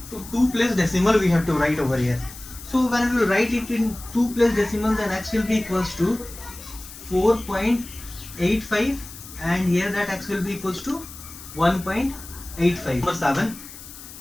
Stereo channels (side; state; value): left; noise; hiss, 15 dB below the sound